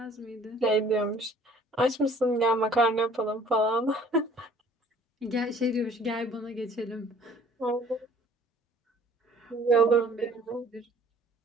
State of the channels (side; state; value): both; normal; correlation 0.54